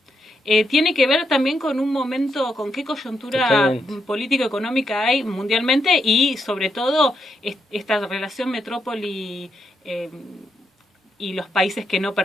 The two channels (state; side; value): normal; both; correlation 0.81